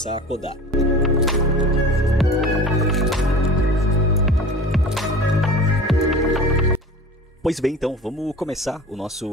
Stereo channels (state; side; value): normal; both; correlation 0.38